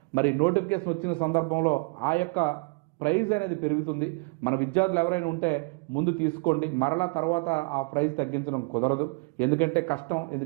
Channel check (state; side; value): quieter; left; 31.9 dB